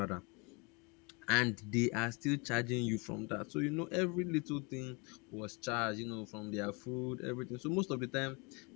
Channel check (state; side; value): quieter; right; 30.2 dB